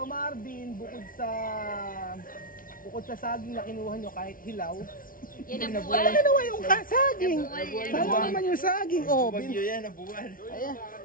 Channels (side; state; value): right; late; 0.40 ms